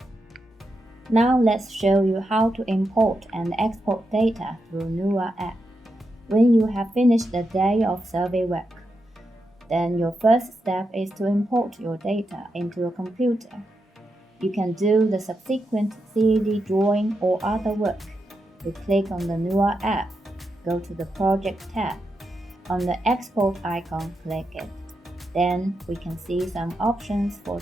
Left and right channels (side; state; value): both; normal; correlation 0.86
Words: Now let's show you how to import and export data through Nuwa app. When you have finished the day of survey work, then your first step is to import your data into your computer. You can do the subsequent CAD drawing or other work. We click on the Nuwa app, go to the Project tab. On the Export icon, click it. Then we can see some options for